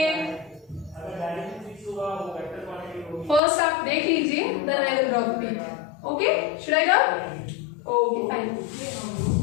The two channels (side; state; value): right; drops out; at 3.4 s